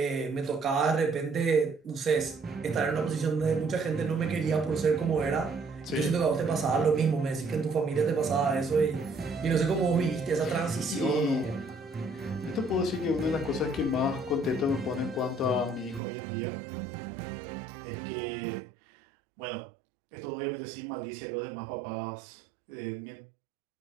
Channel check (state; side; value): drops out; left; at 16.0 s